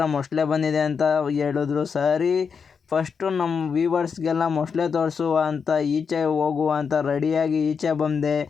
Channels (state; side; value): quieter; right; 6.1 dB